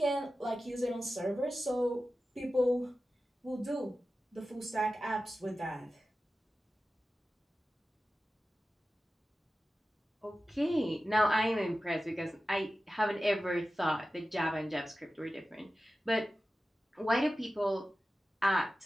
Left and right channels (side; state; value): both; normal; correlation 0.94